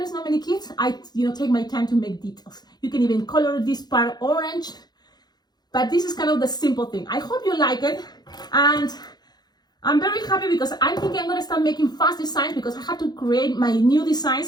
not many kids, I, you know, take my time to make details. You can even color this part orange, but this is kind of the simple thing. I hope you like it, and I'm very happy because I think I'm gonna start making fast designs because I have to create my new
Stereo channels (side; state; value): right; late; 0.20 ms